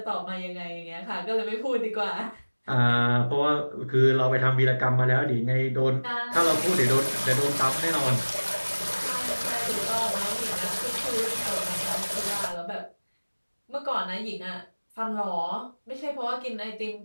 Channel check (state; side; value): inverted; both; correlation -1.00